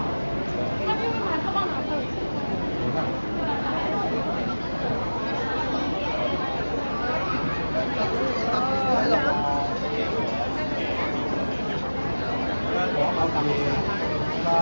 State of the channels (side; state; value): both; inverted; correlation -1.00